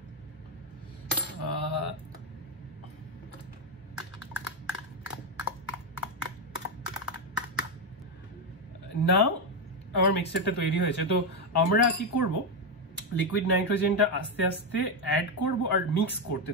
নাও আমার মিক্সচারটা তৈরি হয়েছে। তো আমরা কি করব, লিকুইড নাইট্রোজেনটা আস্তে আস্তে অ্যাড করব আর মিক্স করতে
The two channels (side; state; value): both; normal; correlation 0.06